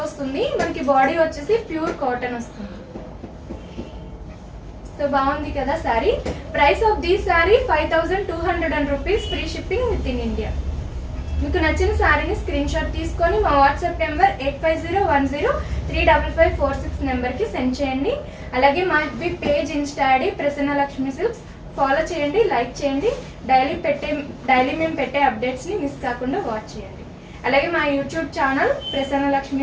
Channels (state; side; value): identical; both; correlation 1.00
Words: వస్తుంది. మనకి బాడీ వచ్చేసి ప్యూర్ కాటన్ వస్తుంది. సో బాగుంది కదా sorry. Price of the sorry 5200 rupees, free shipping within India. మీకు నచ్చిన సారీని స్క్రీన్ షాట్ తీసుకొని మా వాట్సాప్ నెంబర్ 8501035546 నెంబర్కి సెండ్ చేయండి. అలాగే మా page Insta ID Prasanna Lakshmi silks follow చేయండి, లైక్ చేయండి. డైలీ మేము పెట్టే అప్డేట్స్ని మిస్ కాకుండా వాచ్ చేయండి. అలాగే మా YouTube channel Prasanna